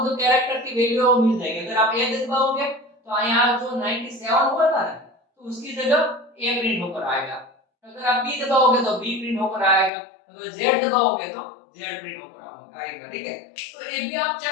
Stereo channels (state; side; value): drops out; right; at 9.9 s